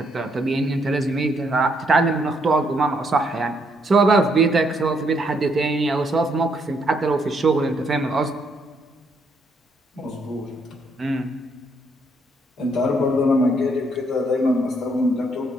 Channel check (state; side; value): normal; both; correlation 0.72